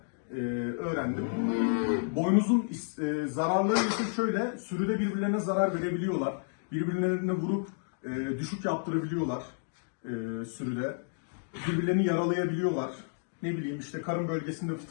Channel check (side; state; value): right; silent; digital silence